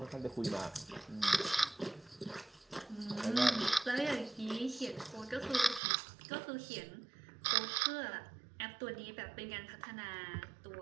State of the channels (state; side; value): drops out; left; at 5.8 s